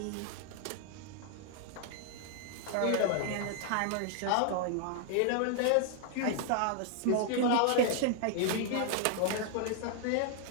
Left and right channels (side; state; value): both; different; correlation 0.00